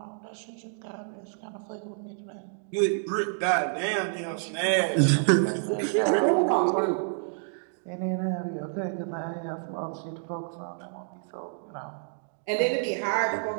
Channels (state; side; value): silent; left; digital silence